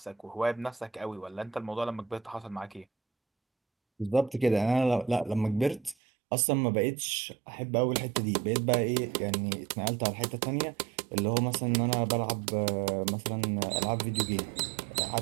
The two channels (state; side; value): drops out; left; at 6.0 s